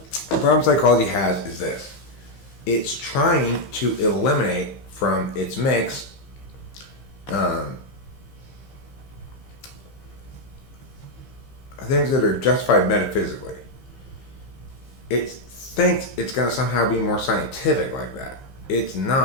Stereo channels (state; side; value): late; right; 15 ms